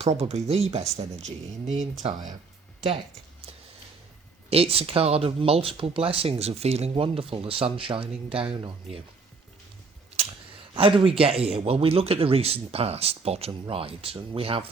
probably the best energy in the entire deck. It's a card of multiple blessings, of feeling wonderful, the sun shining down on you. How do we get here? Well, we look at the recent past, bottom right, and we have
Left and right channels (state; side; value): quieter; left; 4.4 dB